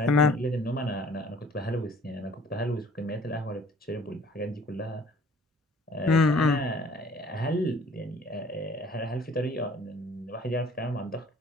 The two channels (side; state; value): both; normal; correlation 0.54